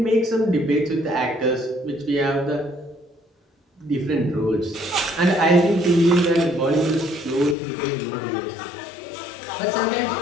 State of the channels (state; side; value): drops out; right; at 7.6 s